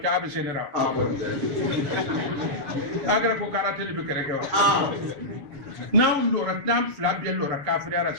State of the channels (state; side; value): late; left; 7.2 ms